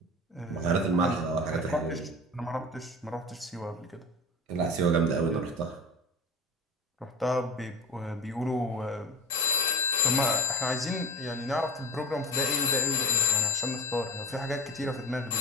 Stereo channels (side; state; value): both; normal; correlation 0.32